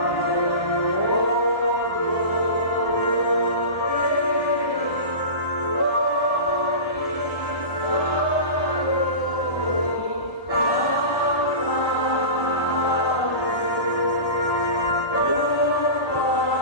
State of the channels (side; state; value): right; late; 1.3 ms